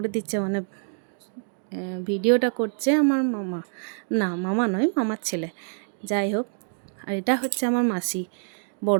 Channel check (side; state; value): left; silent; 59 dB below the other